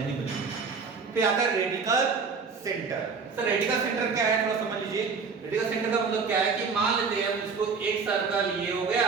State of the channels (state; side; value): quieter; left; 5.2 dB